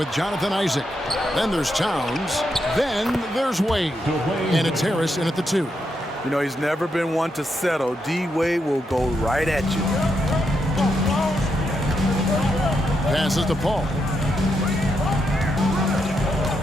Jonathan Isaac. Then there's Towns. Then there's Wade. And it's Harris in at the 2. You know, he's never been one to settle. D-Wade will go right at you. Passes to Paul.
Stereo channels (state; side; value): normal; both; correlation 0.81